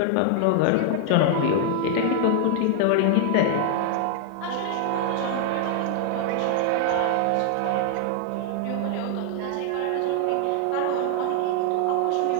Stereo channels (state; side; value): different; both; correlation 0.00